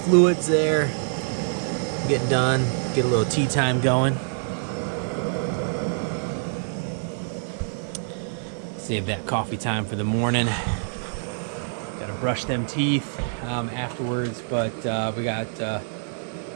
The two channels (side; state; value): left; silent; digital silence